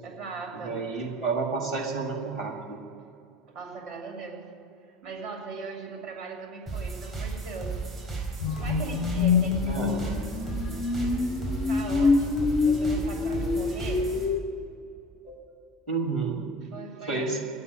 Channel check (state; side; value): normal; both; correlation 0.41